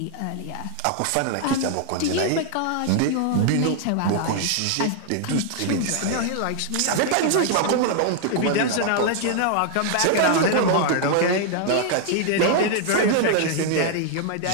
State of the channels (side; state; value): both; different; correlation 0.00